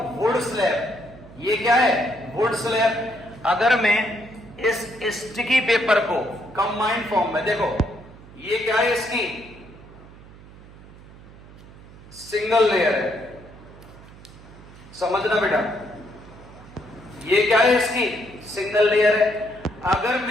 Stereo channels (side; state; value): right; noise; hum, 20 dB below the sound